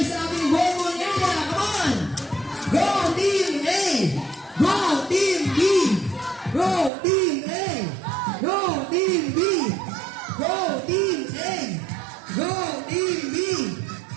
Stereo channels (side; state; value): left; drops out; at 6.9 s